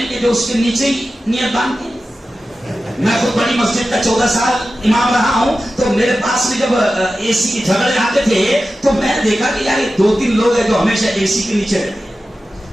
کہ جو اس کے نیچے ہی نیت باندھتے ہیں. میں خود بڑی مسجد کا 14 سال امام رہا ہوں، تو میرے پاس میں جب اے سی کے جھگڑے آتے تھے تو میں نے دیکھا کہ یار 2-3 لوگ ہیں جو ہمیشہ اے سی کے نیچے رہتے ہیں.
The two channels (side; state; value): both; normal; correlation 0.93